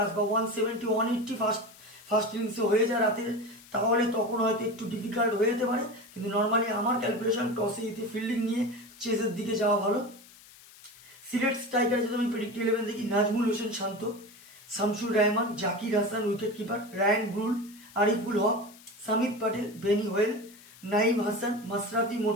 বা 170 180 ফার্স্ট ইনিংসে হয়ে যায় রাতে, তাহলে তখন হয়তো একটু ডিফিকাল্ট হয়ে যেতে পারে। কিন্তু নর্মালি আমার ক্যালকুলেশন টসে জিতে ফিল্ডিং নিয়ে চেসের দিকে যাওয়া ভালো। সিলেট স্ট্রাইকার যদি আমি প্রেডিক্ট 11 দেখি, Najmul Hossain Shanto, Shamsur Rahman, Zakir Hasan wicket keeper, Ryan Burl, Ariful Haque, Samit Patel, Benny Howell, Naim Hasan, Mashrafe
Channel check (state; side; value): noise; left; hiss, 22 dB below the sound